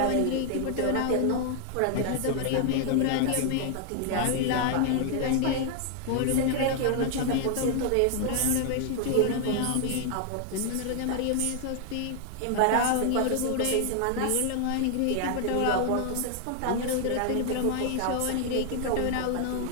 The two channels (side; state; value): both; different; correlation 0.00